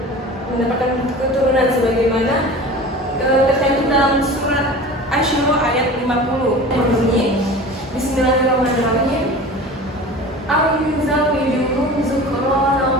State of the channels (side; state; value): both; normal; correlation 0.37